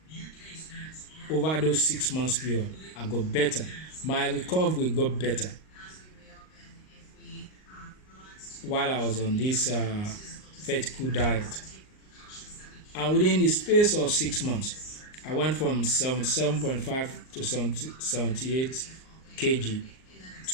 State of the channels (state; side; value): late; right; 38 ms